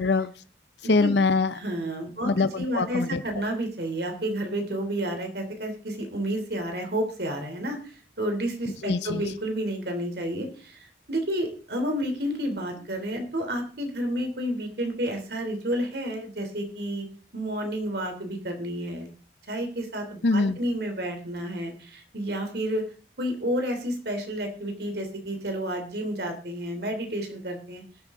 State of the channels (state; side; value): normal; both; correlation 0.48